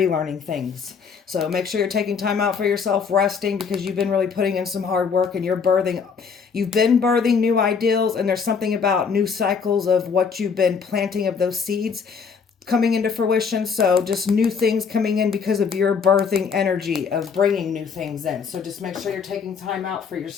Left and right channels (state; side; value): quieter; right; 5.9 dB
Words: things. So make sure you're taking time out for yourself, resting, because you've been really putting in some hard work and you've been birthing new ideals, and there's something about new cycles of what you've been planting of those seeds coming into fruition. So just new things coming in because of your birthing energy of bringing new things in. So just make sure you're taking time out for